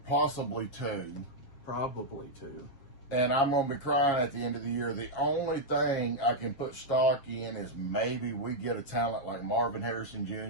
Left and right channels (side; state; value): right; late; 7.3 ms